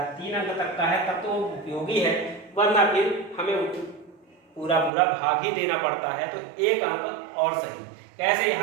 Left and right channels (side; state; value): left; drops out; at 4.9 s